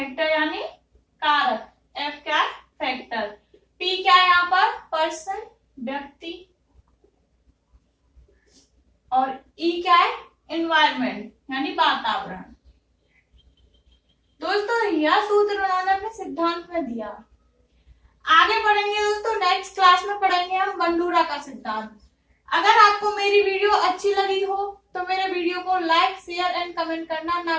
यानी कारक। F क्या है? फैक्टर। P क्या है यहाँ पर? पर्सन, व्यक्ति। और E क्या है? एनवायरमेंट यानी वातावरण। दोस्तों यह सूत्र उन्होंने अपने सिद्धांत में दिया। आगे पढ़ेंगे दोस्तों, नेक्स्ट क्लास में पढ़ेंगे हम बंडूरा का सिद्धांत। अगर आपको मेरी वीडियो अच्छी लगी हो तो मेरे वीडियो को लाइक, शेयर एंड कमेंट करना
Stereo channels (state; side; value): identical; both; correlation 1.00